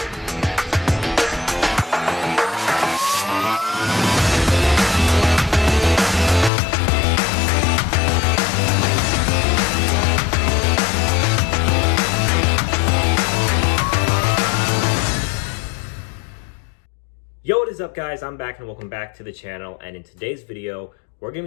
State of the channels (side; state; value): right; drops out; at 6.5 s